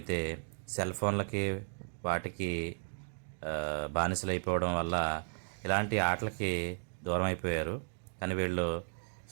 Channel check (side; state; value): left; silent; 55 dB below the other